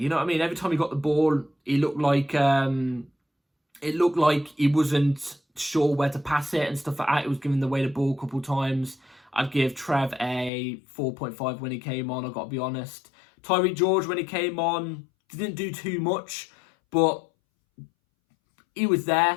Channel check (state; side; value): drops out; right; at 10.5 s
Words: know what I mean? Every time he got the ball, he looked like he wasn't sure where to pass it and stuff like that. He was giving away the ball a couple of times. I'd give Trev a 4.5 when he came on, I've got to be honest. Tyreek George, when he came on, didn't do too much, but he was